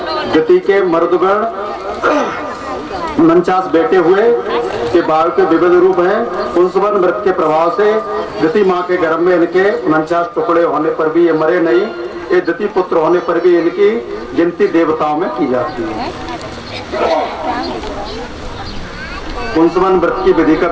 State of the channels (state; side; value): identical; both; correlation 1.00